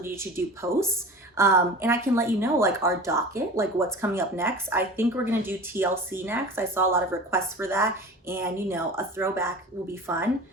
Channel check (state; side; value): normal; both; correlation 0.36